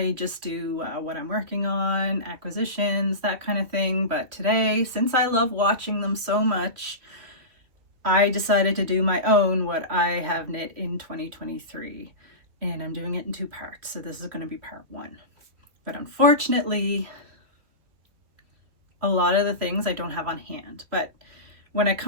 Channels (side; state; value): left; late; 3.1 ms